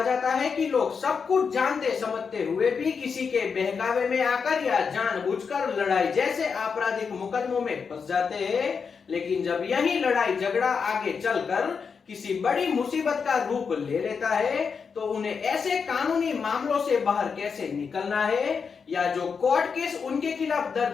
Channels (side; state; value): right; quieter; 5.8 dB